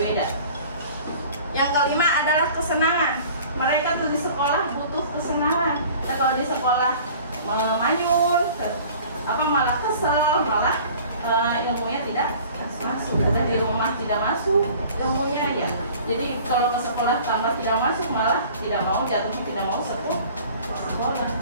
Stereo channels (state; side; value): inverted; both; correlation -0.47